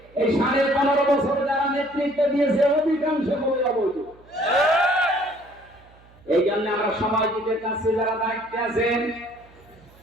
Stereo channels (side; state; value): right; noise; hum, 27 dB below the sound